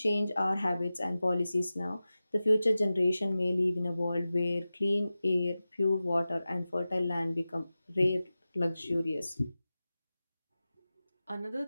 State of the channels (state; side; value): inverted; both; correlation -0.95